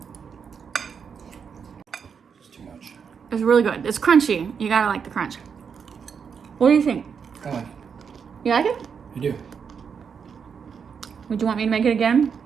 It's too much. It's really good. It's crunchy. You gotta like the crunch. What do you think? I like it. You like it? I do. Would you want me to make it again?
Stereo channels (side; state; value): left; quieter; 6.6 dB